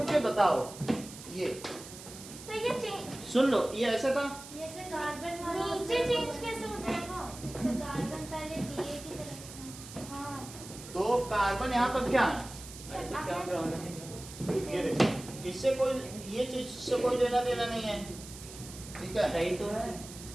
बताओ, ये सर ये चेंज, सुन लो, ये ऐसा था, ये से कार्बन वाला नीचे चेंज कैसे हो जाएगा? सर कार्बन पहले DA की तरफ था। हाँ तो कार्बन यहाँ पर क्या है? अरे तो क्या प्रॉब्लम है? ये देखो, इससे कोई, ये चीज से कोई लेना देना नहीं है, ठीक है? सही तो है।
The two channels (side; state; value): right; noise; hiss, 14 dB below the sound